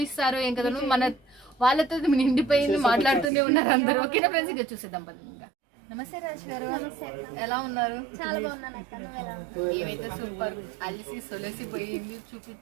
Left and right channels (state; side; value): drops out; left; at 3.3 s